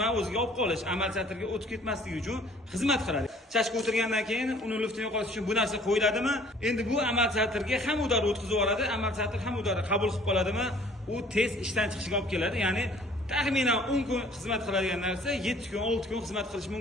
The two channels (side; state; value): both; normal; correlation 0.54